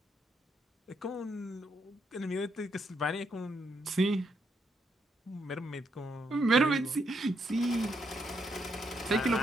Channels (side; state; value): both; normal; correlation 0.77